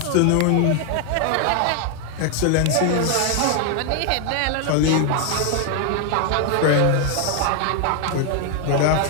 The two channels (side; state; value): both; different; correlation 0.00